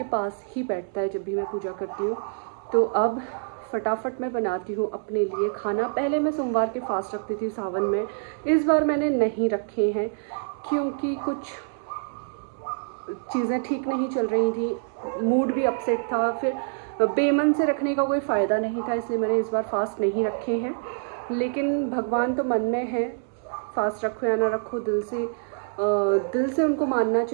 पास ही बैठता है जब भी मैं पूजा करती हूँ। तो अब फटाफट मैं बनाती हूँ अपने लिए खाना। पहले मैं सोमवार के फास्ट रखती थी सावन में, इस बार मैंने नहीं रखे हैं क्योंकि कुछ चीज़ें ठीक नहीं चल रही थी, मूड भी अपसेट था, फिर बेमन से रखने का कोई फ़ायदा नहीं था, इसलिए मैंने इस बार फास्ट नहीं रखे हैं। लेकिन भगवान तो मन में है, फास्ट रखो या ना रखो, दिल से उनको मानना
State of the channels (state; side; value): silent; left; digital silence